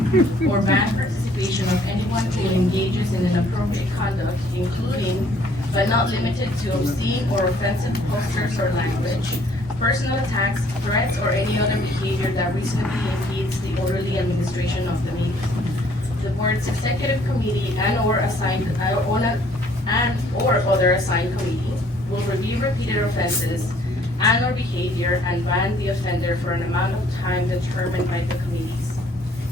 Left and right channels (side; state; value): both; normal; correlation 0.61